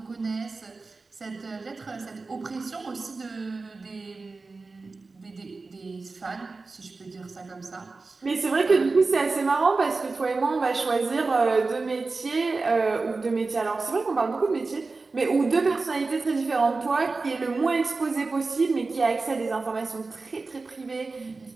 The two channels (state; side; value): quieter; left; 3.9 dB